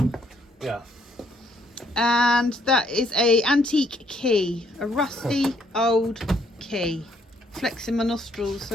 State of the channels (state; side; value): normal; both; correlation 0.68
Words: Yeah. And that is a antique key, a rusty old key. Flexing my nostrils